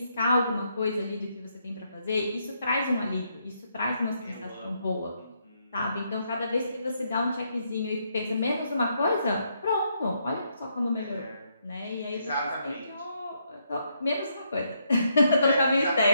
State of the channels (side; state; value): both; inverted; correlation -0.76